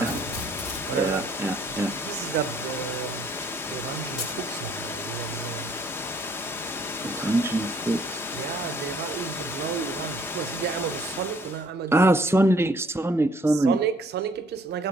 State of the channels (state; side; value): normal; both; correlation 0.61